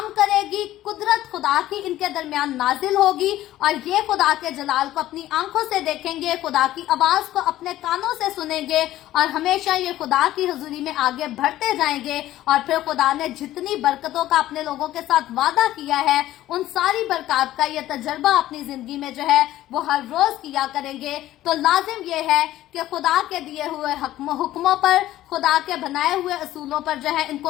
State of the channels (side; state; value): right; quieter; 14.3 dB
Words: करेगी, कुदरत खुदा की इनके दरमियान नाजिल होगी और ये खुदा के जलाल को अपनी आंखों से देखेंगे, खुदा की आवाज को अपने कानों से सुनेंगे और हमेशा ये खुदा की हुजूरी में आगे बढ़ते जाएंगे। और फिर खुदा ने जितनी बरकतों का अपने लोगों के साथ वादा किया है, उन सारी बरकत का ये तजर्बा अपनी जिंदगी में जो है वो हर रोज किया करेंगे। तो लाजिम ये है कि खुदा के दिए हुए हुक्मों पर, खुदा के बनाए हुए असूलों पर जो है इनको